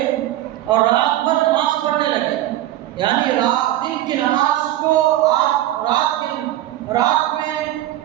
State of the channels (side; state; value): left; quieter; 14.2 dB